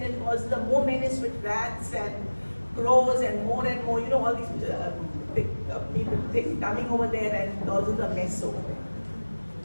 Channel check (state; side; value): inverted; both; correlation -1.00